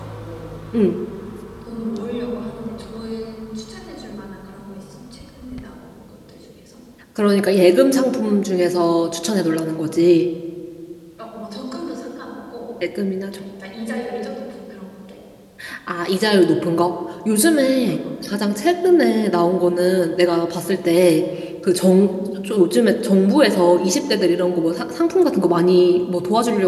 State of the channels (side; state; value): both; identical; correlation 1.00